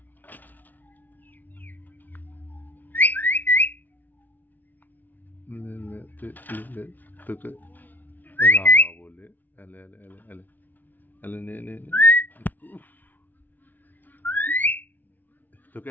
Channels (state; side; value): late; right; 0.083 ms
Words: তোকে রাগা বলে, এলে এলে এলে এলে এলে, নে নে নে। উফ, তোকে